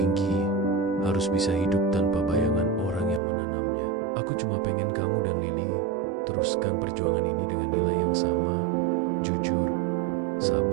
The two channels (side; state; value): left; drops out; at 3.2 s